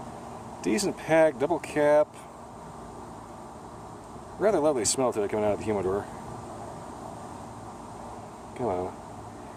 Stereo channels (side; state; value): both; identical; correlation 1.00